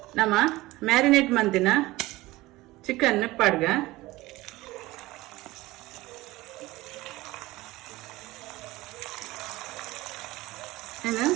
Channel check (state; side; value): quieter; left; 19.1 dB